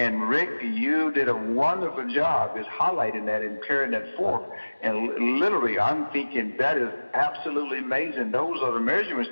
Rick, you did a wonderful job is highlighting that and carrying that forth. And literally, I'm thinking that is absolutely amazing. Those are the measurement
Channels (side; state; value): both; inverted; correlation -1.00